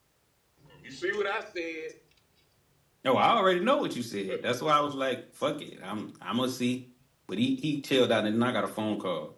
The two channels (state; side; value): identical; both; correlation 1.00